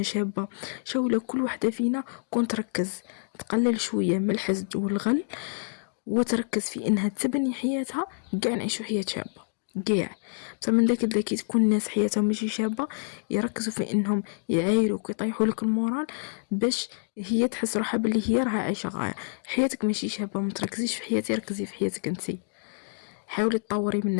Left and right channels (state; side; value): silent; right; digital silence